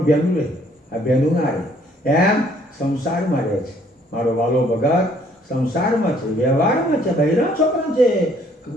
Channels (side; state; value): both; normal; correlation 0.63